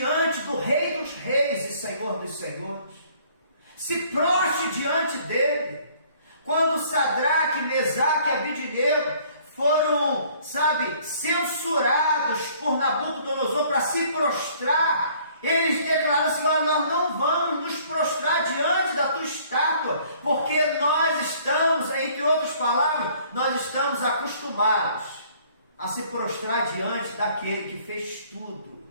do Rei dos Reis e Senhor dos Senhores, se prostre diante dele. Quando Sadraque, Mesaque e Abednego foram, censurados por Nabucodonosor para se prostrar, eles declararam assim: nós não vamos nos prostrar diante da tua estátua, porque nós estamos, entre outras palavras, nós estamos acostumados a se prostrar diante daquele que fez tudo,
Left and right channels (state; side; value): inverted; both; correlation -0.58